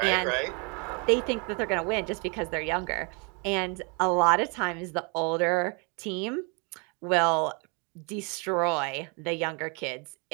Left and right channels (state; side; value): quieter; left; 33.6 dB